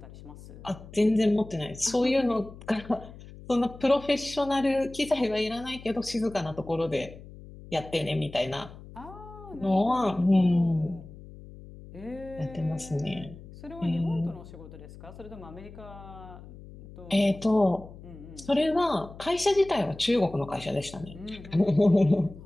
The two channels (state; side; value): noise; left; hum, 17 dB below the sound